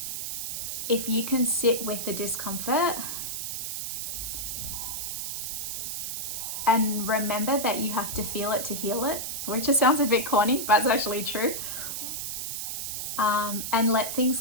if you can sit with the discomfort and remember that you have to feel it to heal it, which just sounds a bit corny, but it's actually true. And let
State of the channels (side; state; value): right; noise; hiss, 4 dB below the sound